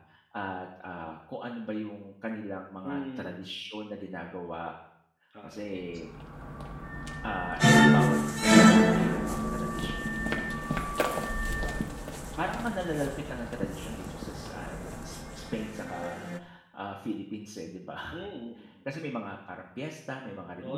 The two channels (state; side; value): identical; both; correlation 1.00